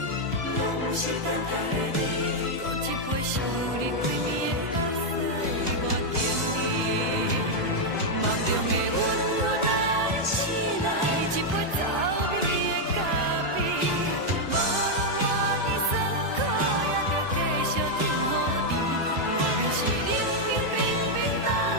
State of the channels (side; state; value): left; late; 1.5 ms